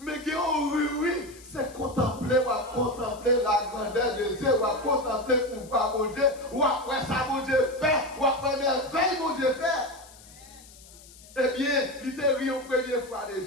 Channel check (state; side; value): noise; left; hiss, 22 dB below the sound